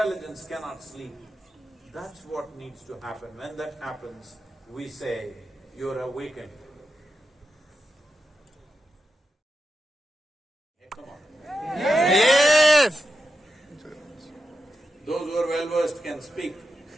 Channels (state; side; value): normal; both; correlation 0.88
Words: cannot sleep. That's what needs to happen. When that happens, we say, you're awakened. Hey, come on. Yes! Those who are well-versed can speak.